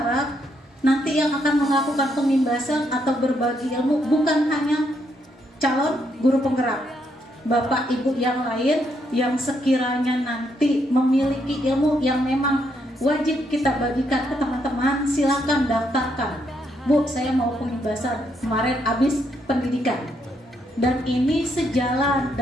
nanti yang akan melakukan pengimbasan atau berbagi ilmu bukan hanya calon guru penggerak, Bapak Ibu yang lain yang sekiranya nanti memiliki ilmu yang memang wajib kita bagikan ke teman-teman. Silakan daftarkan. Bu, saya mau pengibasan, kemarin habis pendidikan. Dan ini sejalan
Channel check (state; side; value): normal; both; correlation 0.76